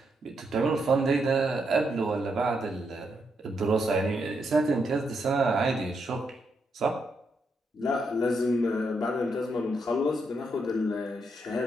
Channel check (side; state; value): both; normal; correlation 0.80